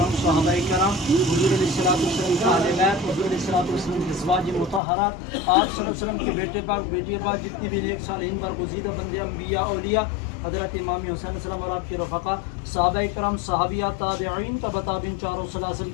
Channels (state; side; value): drops out; right; at 4.8 s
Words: صحابہ کرام، حضور علیہ الصلوۃ والسلام کے اہل بیت، حضور علیہ الصلوۃ والسلام کی ازواج مطہرات، آپ صلی اللہ علیہ وسلم کے بیٹے پاک، بیٹی پاک، جتنے بھی نیک صالحین برگزیدہ بندے انبیاء اولیاء، حضرت امام حسین علیہ السلام اور آپ کے رفقا، صحابہ کرام، صحابیات، تابعین کا بتابعین، چاروں سلاسل